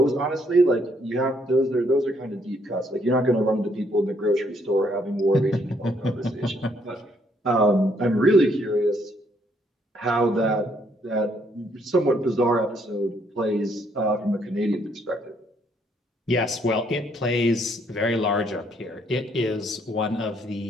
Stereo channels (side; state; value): both; normal; correlation 0.70